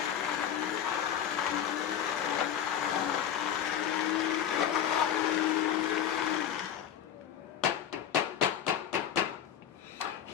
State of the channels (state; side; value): quieter; right; 9.5 dB